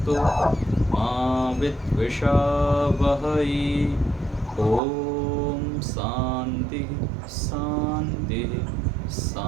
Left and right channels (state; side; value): drops out; left; at 4.8 s